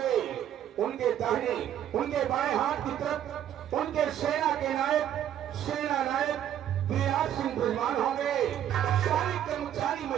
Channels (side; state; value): left; quieter; 10.6 dB